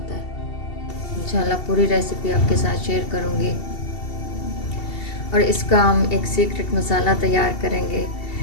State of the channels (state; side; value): late; right; 2.7 ms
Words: है। इंशाल्लाह पूरी रेसिपी आपके साथ शेयर करूँगी। और इसका हम एक सीक्रेट मसाला तैयार करेंगे।